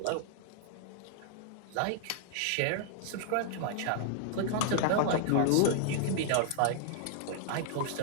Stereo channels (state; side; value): different; both; correlation -0.01